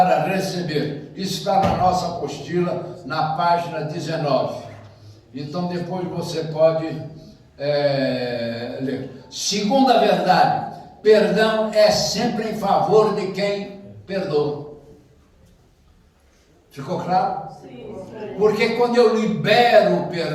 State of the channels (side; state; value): both; identical; correlation 1.00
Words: receber. Isso está na nossa apostila, na página 19. Então depois você pode ler. Segunda verdade: perdão é sempre em favor de quem perdoa. Ficou claro? Sim. Porque quando eu libero o